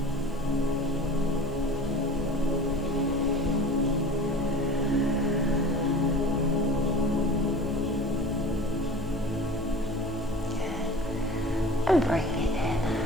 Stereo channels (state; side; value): normal; both; correlation 0.39